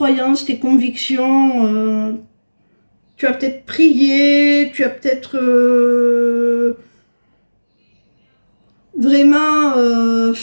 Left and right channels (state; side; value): inverted; both; correlation -1.00